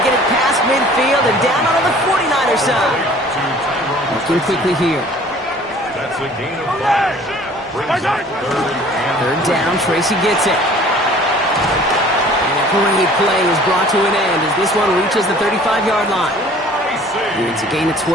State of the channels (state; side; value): normal; both; correlation 0.51